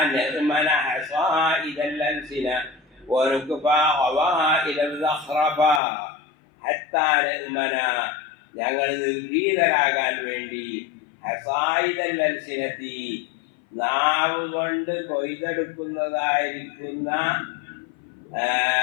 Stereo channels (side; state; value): right; drops out; at 5.8 s